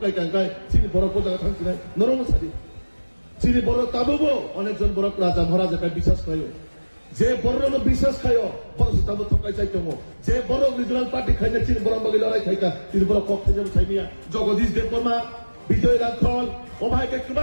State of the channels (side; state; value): both; inverted; correlation -1.00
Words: কাঙ্কাই চিনি বড় প্রজা থাকছি না নরম সারি চিনি বড় তাবো অনেকজন বড় রাজা মহারাজা বিশ্বাস খায় যে বড় বিশ্বাস খায় বড় তাবো ঠকাই চাইতো যে বড় রিজনাল পার্টি খাই না চিনি বড় বাকি লড়াই খাইকা তিনি বড় পক্ষে যেমন খাইনিয়া জগদীশ দেববর্মা বিজয় রাখল ও ভাইকে